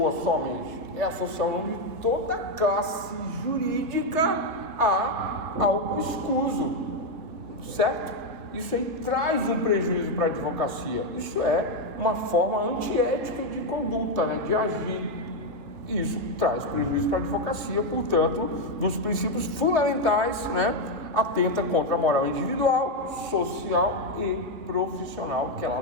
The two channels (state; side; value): late; left; 3.5 ms